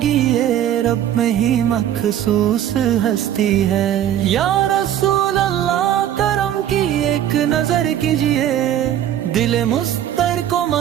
رب میں ہی مخصوص ہستی ہے۔ یا رسول اللہ کرم کی ایک نظر کیجئے، دل مستر کو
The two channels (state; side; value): quieter; left; 11.0 dB